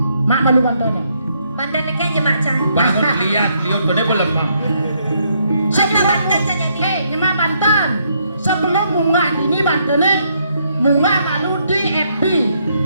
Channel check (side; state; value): both; inverted; correlation -0.73